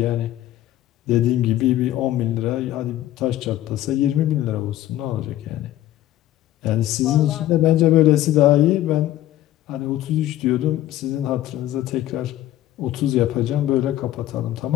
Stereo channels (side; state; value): right; quieter; 13.8 dB